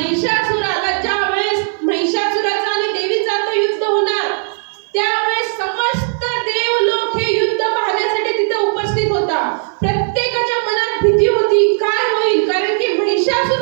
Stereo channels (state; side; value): silent; left; 56 dB below the other